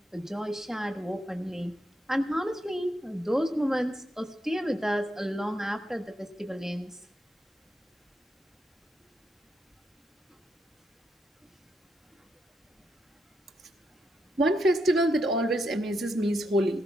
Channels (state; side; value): normal; both; correlation 0.81